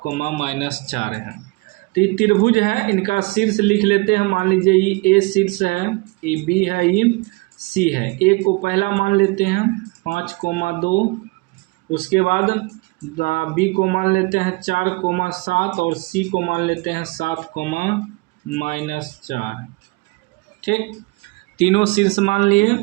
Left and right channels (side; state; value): left; quieter; 26.0 dB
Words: हैं। तो ये त्रिभुज है, इनका शीर्ष लिख लेते हैं। मान लीजिए ये ए शीर्ष है, ये बी है, ये सी है। ए को पहला मान लेते हैं 5,2, उसके बाद बी को मान लेते हैं 4,7 और सी को मान लेते हैं 7,-4। ठीक, तीनों शीर्ष मान लिए।